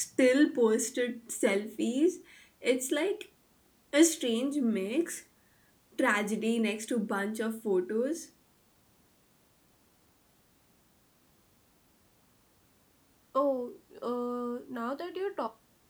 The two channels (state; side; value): identical; both; correlation 1.00